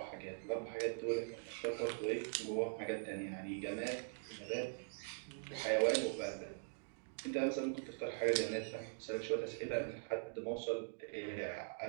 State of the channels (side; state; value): left; silent; digital silence